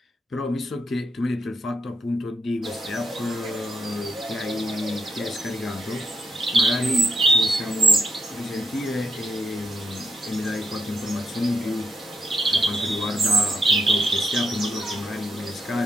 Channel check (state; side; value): normal; both; correlation 0.81